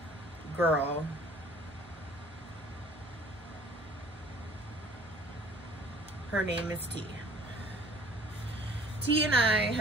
girl. Her name is T. T and I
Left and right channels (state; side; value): noise; right; hum, 23 dB below the sound